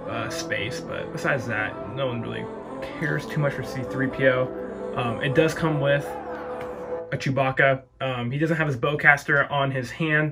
space. But besides that, no one really cares too much for C-3PO. It does come with a Chewbacca. He doesn't have his bowcaster on his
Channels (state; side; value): identical; both; correlation 1.00